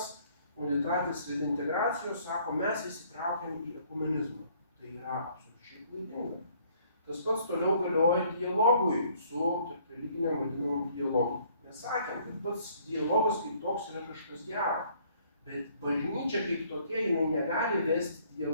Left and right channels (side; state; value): both; inverted; correlation -0.61